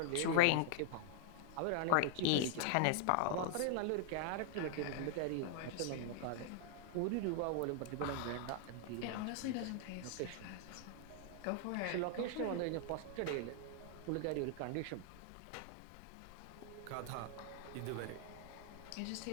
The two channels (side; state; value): both; different; correlation -0.01